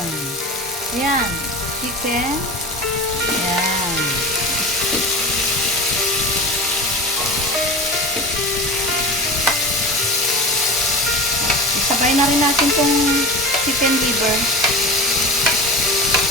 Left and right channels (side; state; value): both; normal; correlation 0.31